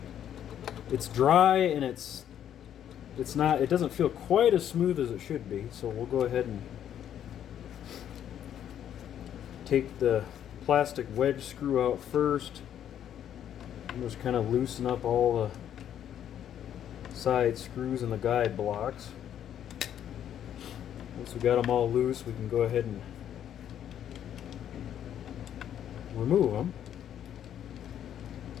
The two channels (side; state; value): right; quieter; 10.1 dB